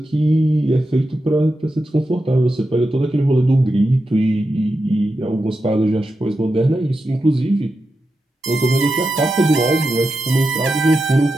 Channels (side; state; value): both; normal; correlation 0.89